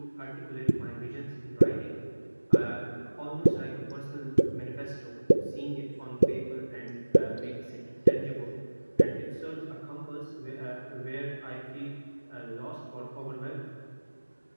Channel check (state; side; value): inverted; both; correlation -1.00